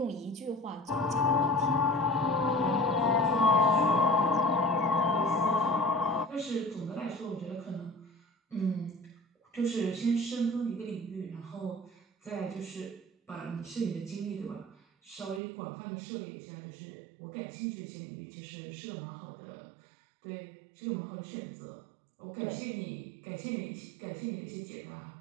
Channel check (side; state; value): left; drops out; at 15.4 s